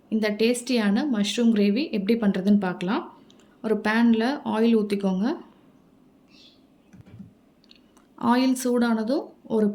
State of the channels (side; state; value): both; identical; correlation 1.00